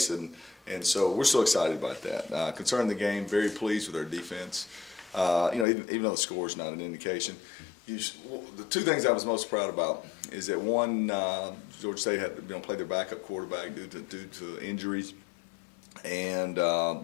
and so we're so excited about that. Concerning the game, very pleased with our defense. Even though the score is not an indication, the two things I was most proud about is that one, Georgia State had played their backup quarterback due to injuries, and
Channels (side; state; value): right; drops out; at 5.7 s